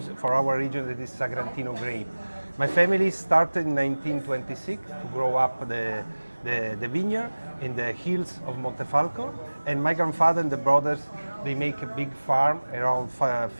for our region, that is Sagrantino grape. My family started in 1926 to grow up the vineyard in the hills of Montefalco, and my grandfather and the brothers, they make a big farm around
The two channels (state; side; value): inverted; both; correlation -1.00